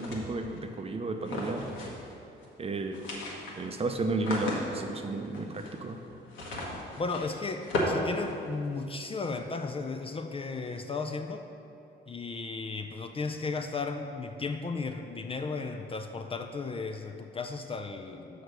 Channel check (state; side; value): normal; both; correlation 0.51